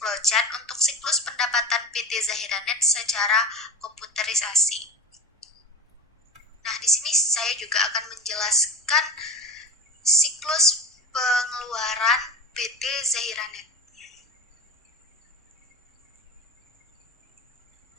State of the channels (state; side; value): normal; both; correlation 0.30